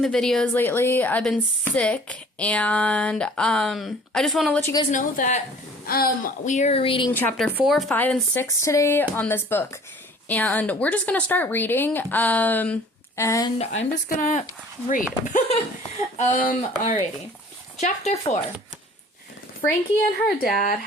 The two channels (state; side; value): normal; both; correlation 0.50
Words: videos lately. I've been sick, and I just want to let you guys know that we are reading chapter 4, 5, and 6 today on this book. And we're just going to start reading, and I'm just going to read. Alrighty. Chapter 4. Frankie and her dad